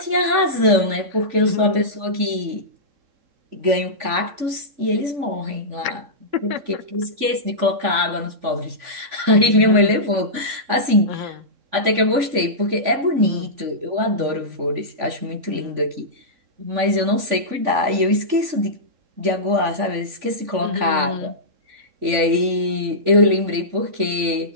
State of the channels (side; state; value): left; late; 3.5 ms